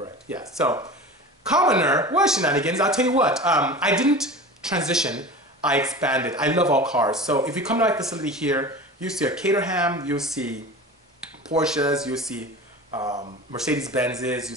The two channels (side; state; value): both; normal; correlation 0.34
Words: Yeah. So, commoner, well, Shenanigans. I'll tell you what. I didn't transition. I expanded. I love all cars. So if you come to my facility here, you see a Caterham, you see Porsches, you see Mercedes-Benzes, you